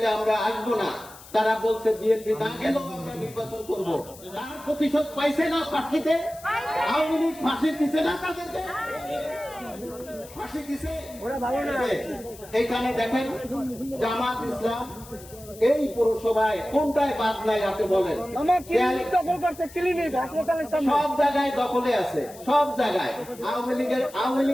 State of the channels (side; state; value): left; noise; hiss, 19 dB below the sound